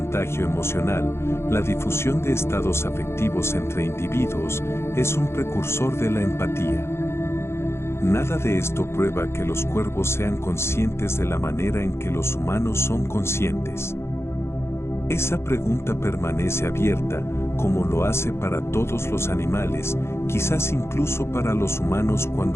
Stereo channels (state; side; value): late; right; 0.12 ms